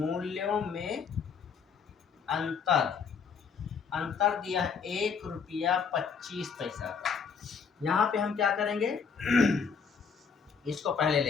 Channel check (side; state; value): right; quieter; 6.0 dB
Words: में अंतर अंतर दिया है 1 रुपया 25 पैसा का। यहाँ पे हम क्या करेंगे इसको पहले